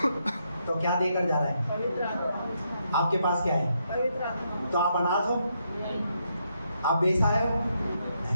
तो क्या देकर जा रहा है? आपके पास क्या है? तो आप अनाथ हो? आप बेसहाय हो?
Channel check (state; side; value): inverted; both; correlation -0.78